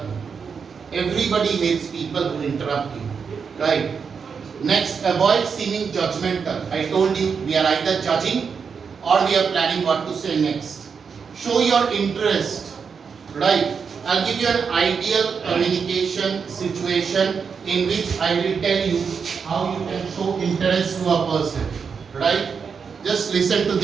me. Everybody hates people who interrupt you, right? Next, avoid seeming judgmental. I told you, we are either judging or we are planning what to say next. Show your interest, right? I'll give you an ideal communication situation in which I will tell you how you can show interest to a person, right? Just listen to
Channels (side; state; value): left; quieter; 6.0 dB